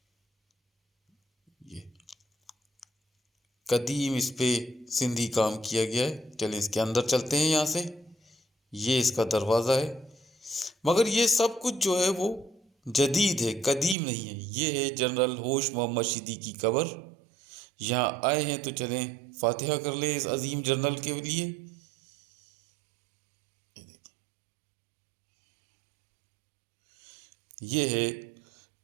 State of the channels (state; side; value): drops out; left; at 14.0 s